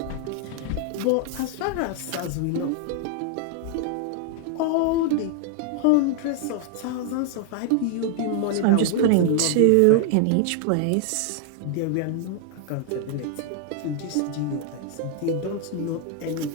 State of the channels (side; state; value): both; different; correlation 0.00